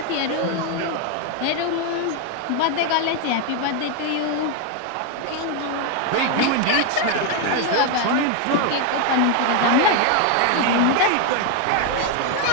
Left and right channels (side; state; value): both; different; correlation 0.01